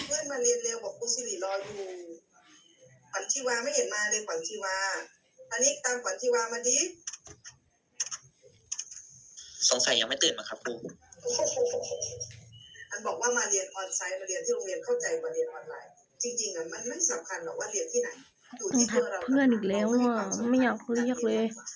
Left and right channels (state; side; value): identical; both; correlation 1.00